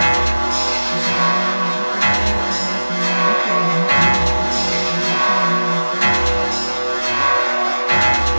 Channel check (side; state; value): both; inverted; correlation -1.00